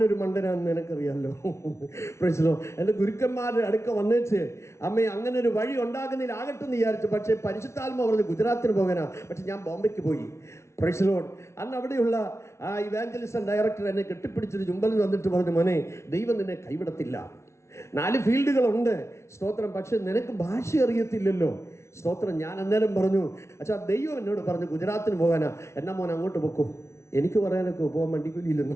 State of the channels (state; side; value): late; right; 0.13 ms